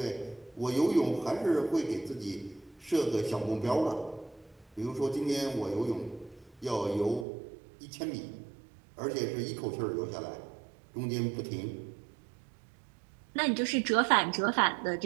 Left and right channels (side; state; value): left; drops out; at 7.2 s